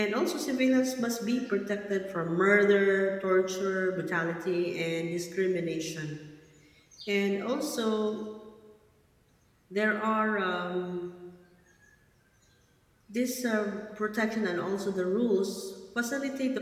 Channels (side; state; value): both; identical; correlation 1.00